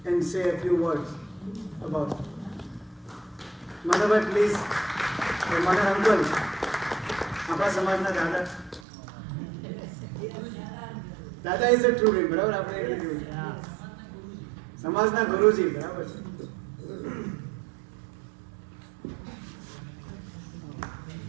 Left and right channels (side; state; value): left; drops out; at 8.8 s